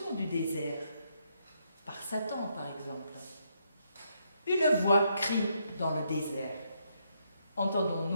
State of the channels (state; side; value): inverted; both; correlation -0.76